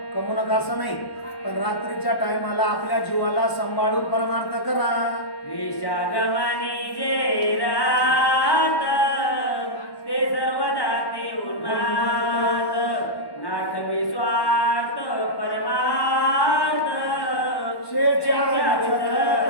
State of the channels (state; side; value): late; right; 1.1 ms